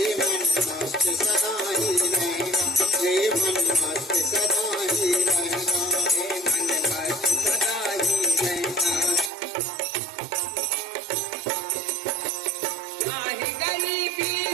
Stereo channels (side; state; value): left; drops out; at 9.3 s